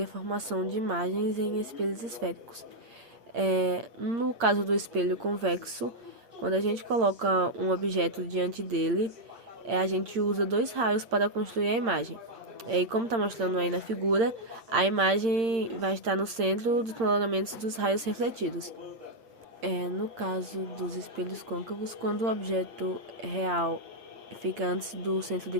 a formação de imagens em espelhos esféricos. No caso do espelho convexo, quando a gente coloca um objeto diante dele, a gente usa dois raios para construir a imagem. E como está mostrando aí na figura, a imagem vai estar no centro dos prolongamentos dos raios refletidos. No caso dos espelhos côncavos, quando o objeto real fica antes do centro de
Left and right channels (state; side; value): late; left; 8.8 ms